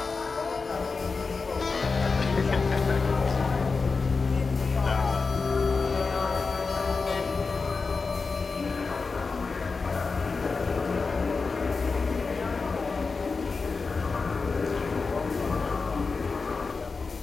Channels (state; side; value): quieter; right; 4.4 dB